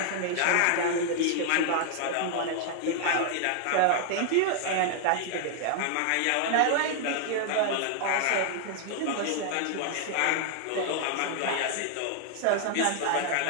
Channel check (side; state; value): both; different; correlation 0.00